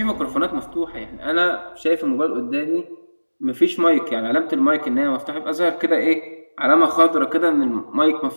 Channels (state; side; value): inverted; both; correlation -1.00